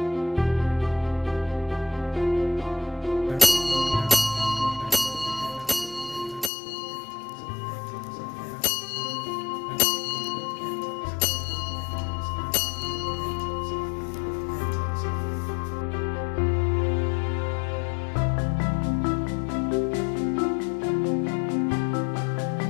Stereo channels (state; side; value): drops out; right; at 6.5 s